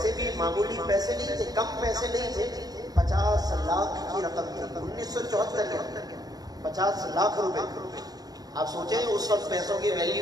بھی معمولی پیسے نہیں تھے، کم پیسے نہیں تھے، 50 لاکھ کی رقم تھی 1974 کے اندر، 50 لاکھ روپے۔ آپ سوچیں اس وقت پیسوں کی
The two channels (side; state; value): left; late; 0.19 ms